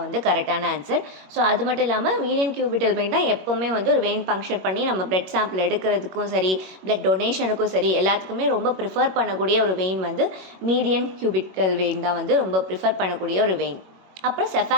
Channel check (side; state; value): left; late; 21 ms